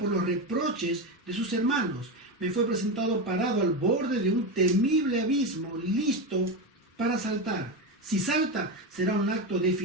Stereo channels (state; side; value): normal; both; correlation 0.15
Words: los reproches de sus hermanos. Me fue presentado parado al borde de un temible abismo, listo para saltar. Si salta, será un acto